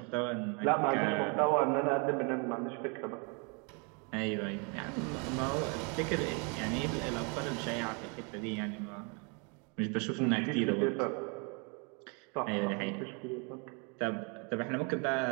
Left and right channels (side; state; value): left; quieter; 34.1 dB